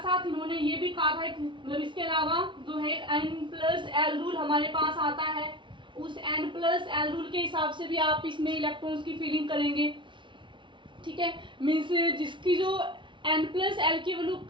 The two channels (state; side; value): late; left; 0.24 ms